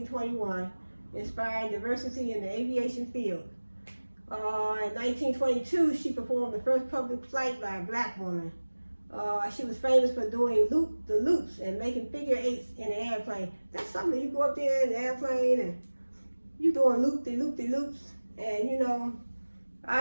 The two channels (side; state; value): both; inverted; correlation -1.00